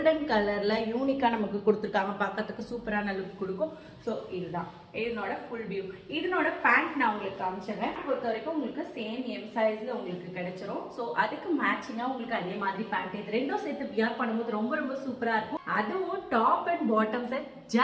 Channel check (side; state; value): both; identical; correlation 1.00